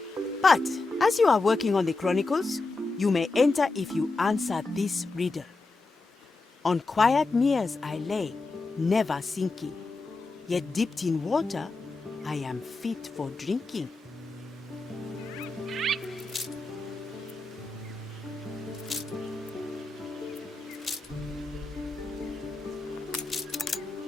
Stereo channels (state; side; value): quieter; right; 3.5 dB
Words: But as you are working on the Chronicles, you may enter if you answer this riddle. On quiet meres I lay, never sinking, yet dipped in water, I am fit for drinking.